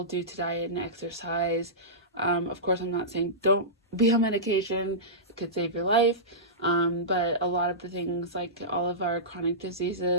due to diet and exercise. Of course, I'm not saying don't be on medication. It could save your life. But a lot of the things, like all of our chronic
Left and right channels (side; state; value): both; normal; correlation -0.17